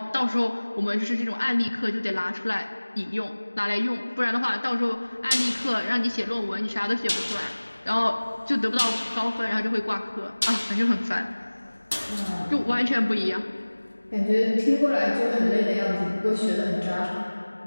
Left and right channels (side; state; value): both; inverted; correlation -1.00